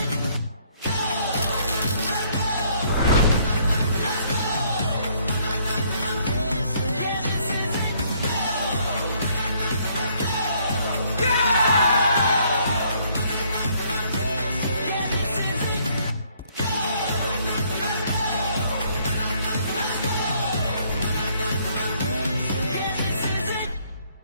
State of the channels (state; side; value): inverted; both; correlation -0.65